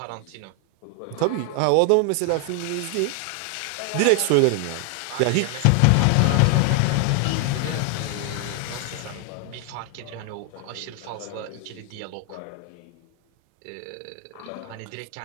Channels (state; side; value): different; both; correlation 0.00